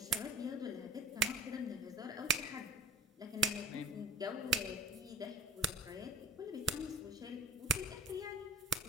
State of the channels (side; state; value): both; normal; correlation 0.38